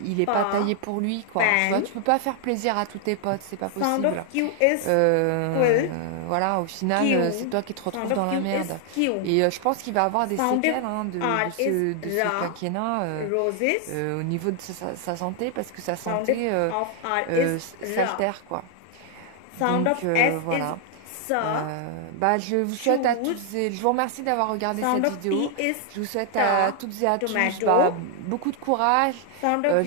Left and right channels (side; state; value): both; different; correlation 0.00